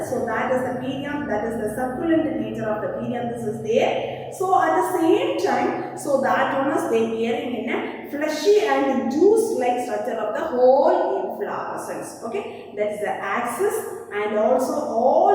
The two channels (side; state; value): both; identical; correlation 1.00